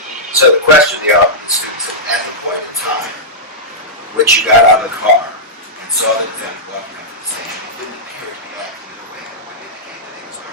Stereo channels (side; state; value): both; normal; correlation -0.11